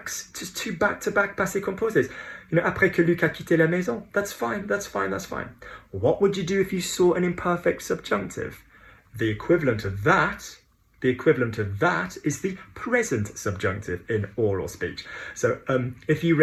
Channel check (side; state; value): both; identical; correlation 1.00